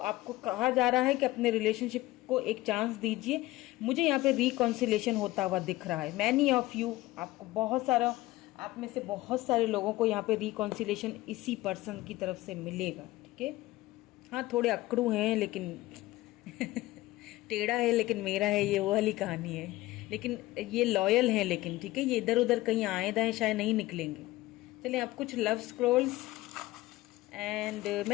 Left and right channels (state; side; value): quieter; right; 18.0 dB